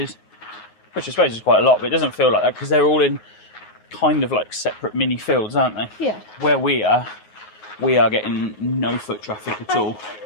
which I suppose is quite a lot, but it doesn't feel like that because they're all in kind of like separate mini fields, aren't they? Yeah. Where we are getting no foot traffic at all.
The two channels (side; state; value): right; late; 9.5 ms